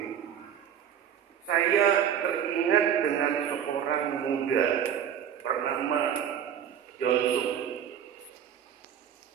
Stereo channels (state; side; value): quieter; left; 9.0 dB